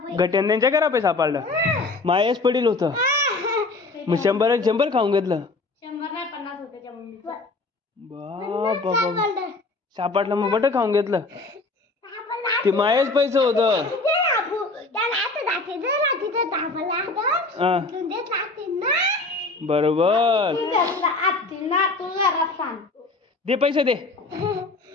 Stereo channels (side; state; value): right; quieter; 3.4 dB